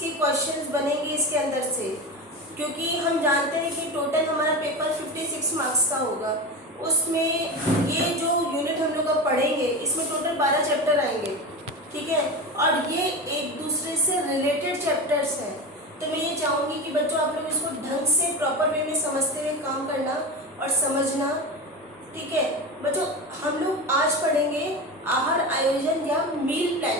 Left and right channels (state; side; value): normal; both; correlation 0.23